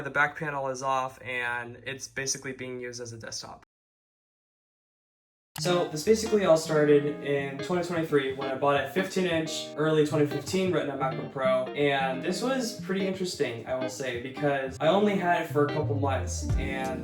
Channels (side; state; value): both; identical; correlation 1.00